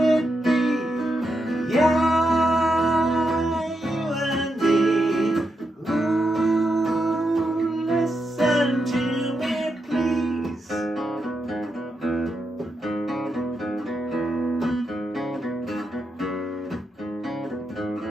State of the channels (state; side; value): normal; both; correlation 0.84